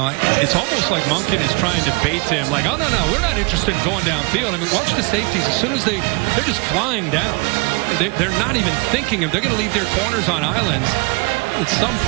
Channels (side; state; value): left; quieter; 29.7 dB